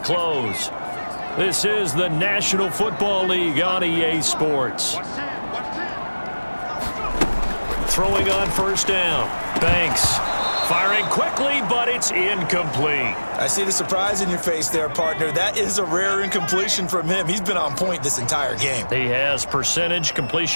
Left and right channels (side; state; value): both; inverted; correlation -1.00